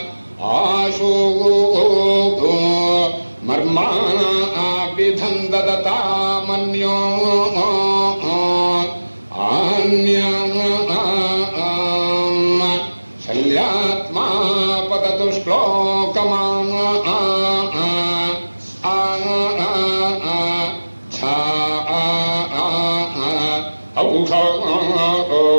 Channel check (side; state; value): both; inverted; correlation -1.00